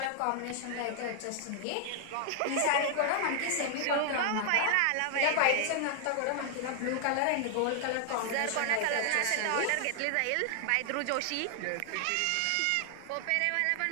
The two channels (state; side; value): different; both; correlation 0.00